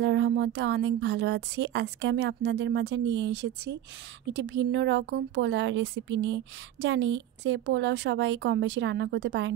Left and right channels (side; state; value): left; quieter; 12.0 dB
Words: রহমতে অনেক ভালো আছি। আজকে আমি আপনাদের মাঝে নিয়ে এসেছি একটি ভিন্ন রকম পোলাও রেসিপি নিয়ে। জানি যে পোলাও সবাই কম বেশি রান্না করতে পারেন,